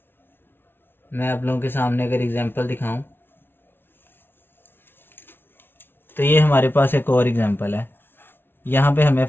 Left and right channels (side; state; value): right; late; 0.11 ms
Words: मैं आप लोगों के सामने अगर एग्जांपल दिखाऊं तो ये हमारे पास एक और एग्जांपल है। यहाँ पे हमें